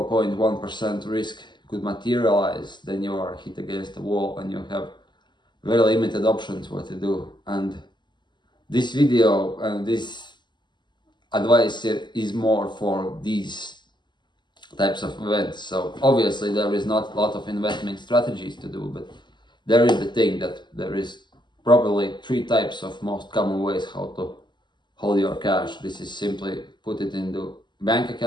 risk could materialize, then you are hit against the wall and you have very limited options what to do. And this video and this advice is more for these types of events. So obviously there is not a lot of investment strategies to do, but there is the thing that there is probably 3 types of most common ways how to hold your cash. This is simply put it into bank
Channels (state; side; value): late; right; 0.22 ms